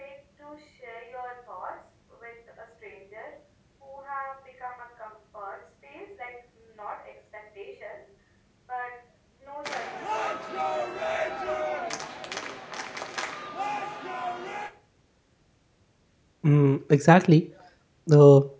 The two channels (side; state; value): both; identical; correlation 1.00